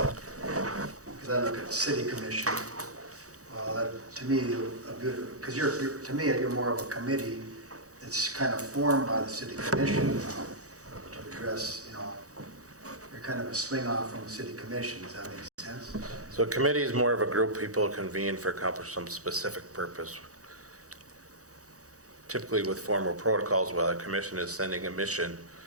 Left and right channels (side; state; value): left; late; 0.66 ms